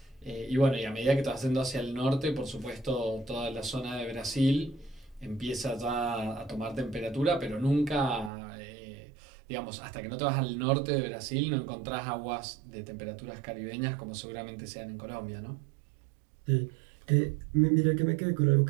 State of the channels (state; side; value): drops out; left; at 8.3 s